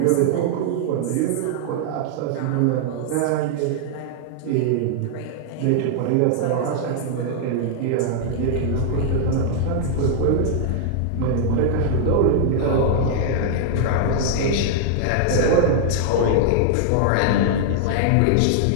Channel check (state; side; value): different; both; correlation -0.01